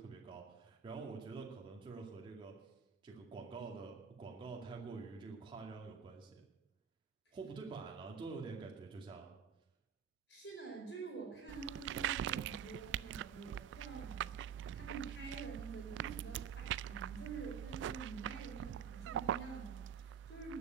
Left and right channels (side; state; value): left; quieter; 7.4 dB